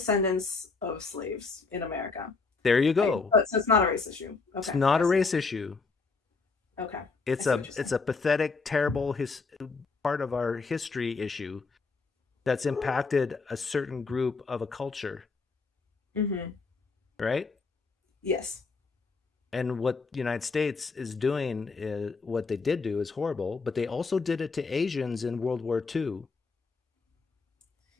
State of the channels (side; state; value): right; quieter; 4.4 dB